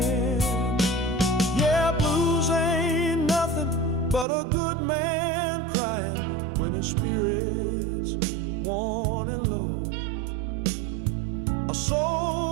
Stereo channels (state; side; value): drops out; left; at 4.2 s